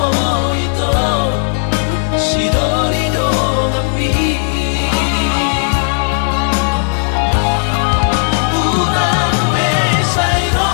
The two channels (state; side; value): silent; right; digital silence